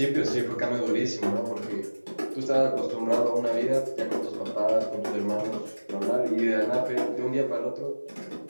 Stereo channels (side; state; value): both; inverted; correlation -1.00